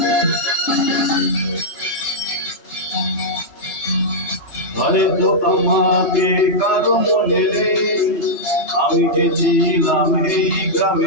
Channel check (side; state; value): right; late; 3.3 ms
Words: হয়তো আমাকে কারো মনে নেই, আমি যে ছিলাম এই